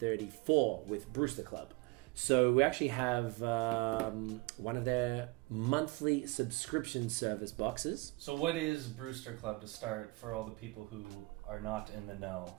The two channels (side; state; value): left; quieter; 24.1 dB